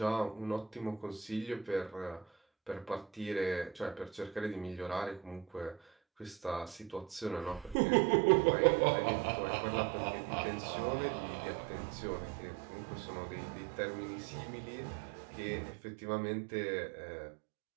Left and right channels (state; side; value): drops out; left; at 7.8 s